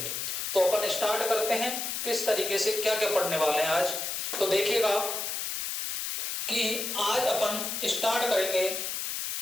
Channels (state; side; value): noise; left; hiss, 3 dB below the sound